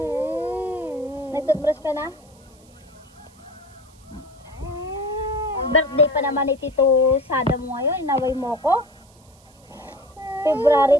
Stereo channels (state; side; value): noise; right; hiss, 29 dB below the sound